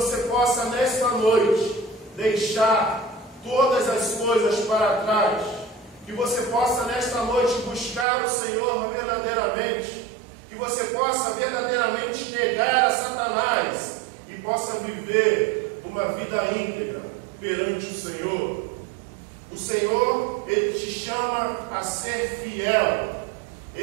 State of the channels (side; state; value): left; drops out; at 8.1 s